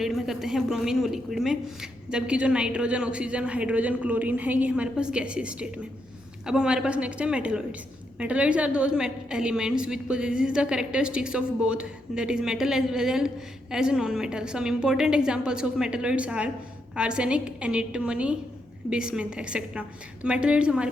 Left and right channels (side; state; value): both; normal; correlation 0.80